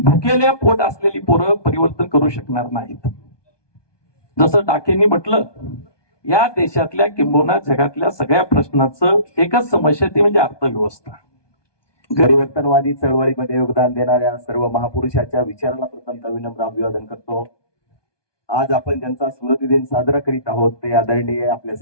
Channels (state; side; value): late; right; 1.2 ms